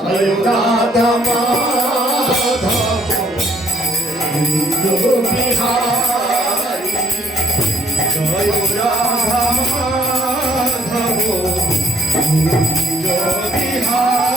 রাধা মাধব কুঞ্জ বিহারী। জয় রাধা মাধব কুঞ্জ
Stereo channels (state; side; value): normal; both; correlation 0.65